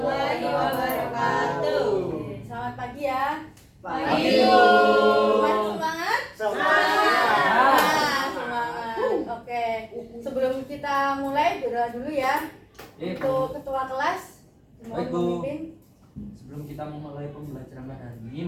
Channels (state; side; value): identical; both; correlation 1.00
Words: wabarakatuh. Oke, selamat pagi ya. Pagi. Semangat? Semangat. Nah, semangat. Oke. Sebelum kita mulai berdoa dulu ya. Untuk ketua kelas, mohon Baik, Bu. memimpin. Sebelum kita memulai pembelajaran pada hari ini,